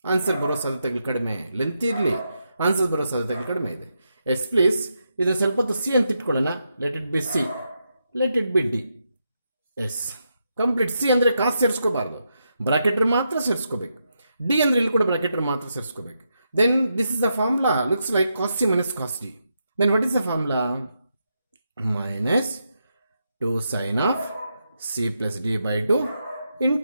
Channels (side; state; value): both; inverted; correlation -0.83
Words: Answer ಬರೋ ಸಾಧ್ಯತೆಗಳು ಕಡಿಮೆ. Length ಇರಲಿ, answer ಬರೋ ಸಾಧ್ಯತೆಗಳು ಕಡಿಮೆ ಇದೆ. S please ಇದು ಸ್ವಲ್ಪ ಹೊತ್ತು ಸಿ ಅಂತ ಇಟ್ಕೊಳ್ಳೋಣ. Let it be C, let it be D. Yes complete. C ಅಂದರೆ ಕಾಸ್ ಸೇರಿಸ್ಕೋಬಾರ್ದು, ಬ್ರಾಕೆಟರ್ ಮಾತ್ರ ಸೇರಿಸ್ಕೋಬೇಕು. ಡಿ ಅಂದರೆ ಇಲ್ಲಿ ಕೂಡ ಬ್ರಾಕೆಟರ್ ಮಾತ್ರ ಸೇರಿಸ್ಕೋಬೇಕು. Then this is the formula looks like cos C minus cos D. Then what is the formula? Minus 2 sin of c plus d by 2